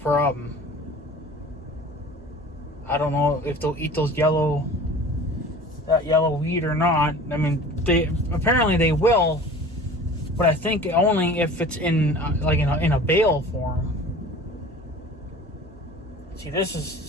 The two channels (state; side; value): normal; both; correlation 0.42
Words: I don't know if they'll eat that yellow weed or not. Apparently they will, but I think only if it's in a bale form. See, this is